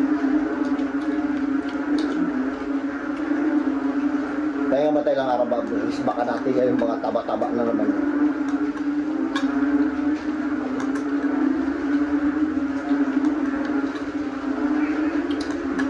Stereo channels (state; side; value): identical; both; correlation 1.00